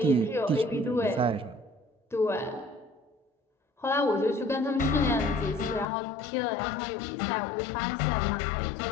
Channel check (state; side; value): drops out; right; at 5.9 s